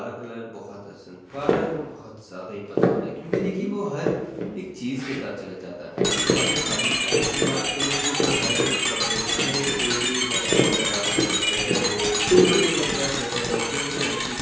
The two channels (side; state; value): both; identical; correlation 1.00